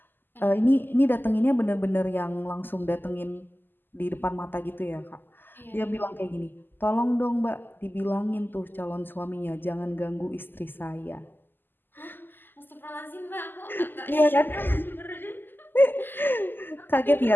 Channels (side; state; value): right; late; 0.093 ms